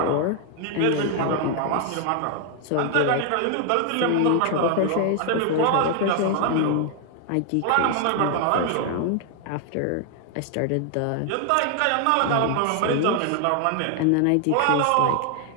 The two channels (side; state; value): both; different; correlation 0.00